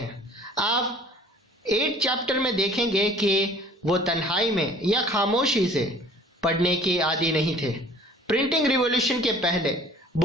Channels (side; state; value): both; normal; correlation 0.51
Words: आप 8 चैप्टर में देखेंगे कि वो तन्हाई में या खामोशी से पढ़ने के आदी नहीं थे। प्रिंटिंग रिवॉल्यूशन के पहले